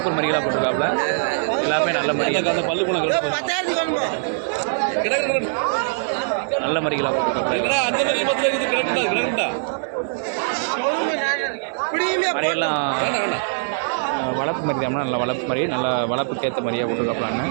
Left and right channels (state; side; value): silent; left; 64 dB below the other